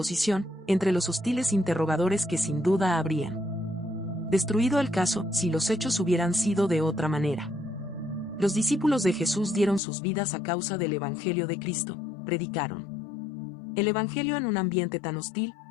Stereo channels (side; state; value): right; drops out; at 9.8 s